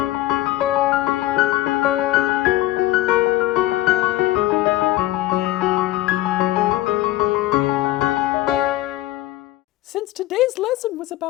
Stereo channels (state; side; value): quieter; right; 16.0 dB